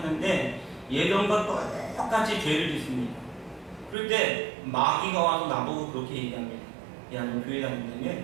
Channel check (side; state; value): left; drops out; at 4.0 s